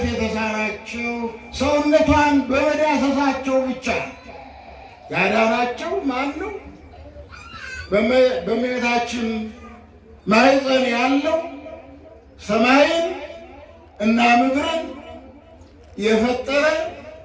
የተሳናቸው ሰውነቷን በመዳሰሳቸው ብቻ ያዳናቸው ማን ነው? በእመቤታችን ማኅፀን ያለው ሰማይን እና ምድርን የፈጠረ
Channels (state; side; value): identical; both; correlation 1.00